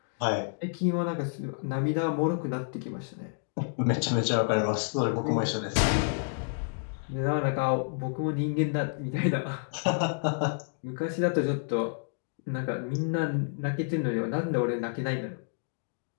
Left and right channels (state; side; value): silent; right; digital silence